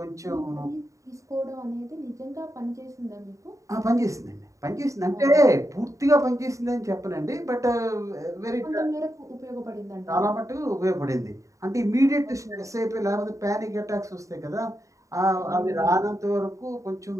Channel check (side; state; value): left; late; 0.16 ms